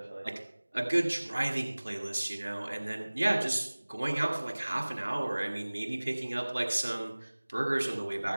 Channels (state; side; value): inverted; both; correlation -1.00